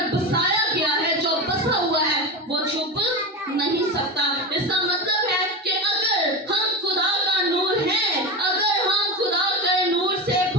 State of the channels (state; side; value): normal; both; correlation 0.22